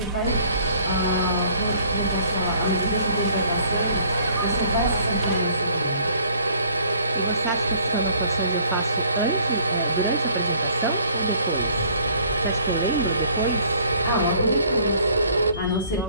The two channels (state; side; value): inverted; both; correlation -0.58